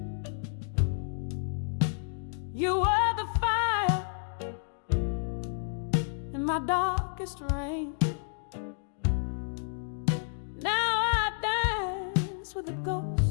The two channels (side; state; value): right; silent; digital silence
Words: You were the fire in my darkest rain. Now I dance with the